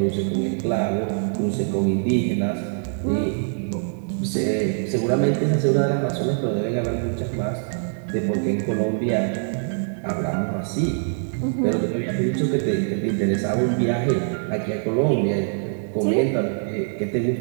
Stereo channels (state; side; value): silent; left; 60 dB below the other